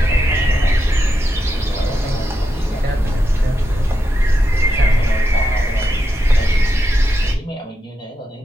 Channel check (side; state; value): both; normal; correlation 0.86